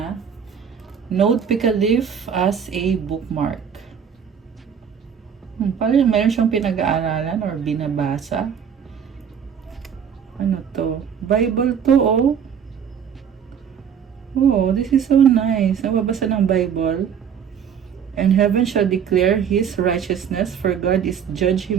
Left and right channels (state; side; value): quieter; left; 7.8 dB